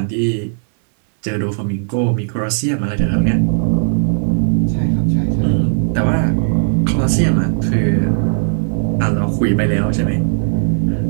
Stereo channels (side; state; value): left; silent; digital silence